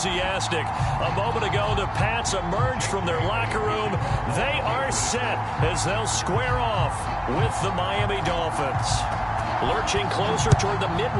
A moment ago, the Pats emerged from their locker room. They are set as they'll square off with the Miami Dolphins. Lurching closer toward the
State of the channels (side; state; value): both; identical; correlation 1.00